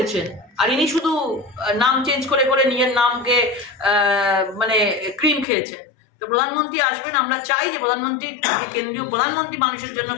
আর ইনি শুধু নাম চেঞ্জ করে করে নিজের নামকে মানে ক্রিম খেয়েছেন। তো প্রধানমন্ত্রী আসবেন, আমরা চাই যে প্রধানমন্ত্রী, কেন্দ্রীয় প্রধানমন্ত্রী মানুষের জন্য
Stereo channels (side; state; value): right; drops out; at 5.5 s